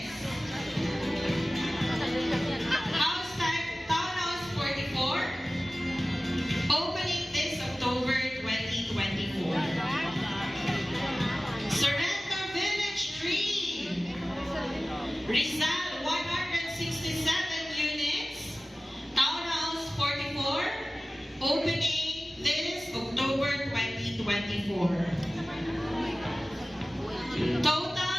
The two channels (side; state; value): both; normal; correlation 0.96